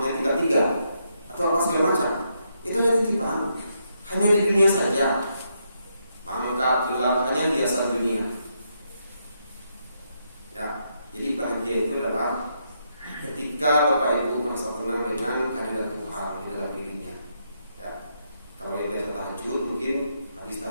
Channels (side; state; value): both; inverted; correlation -0.79